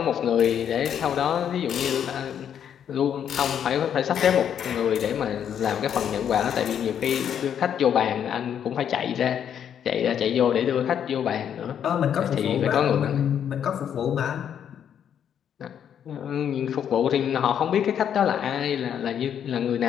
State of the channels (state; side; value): quieter; right; 8.9 dB